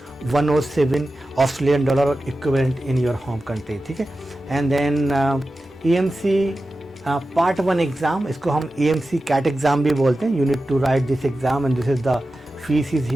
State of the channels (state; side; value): normal; both; correlation 0.93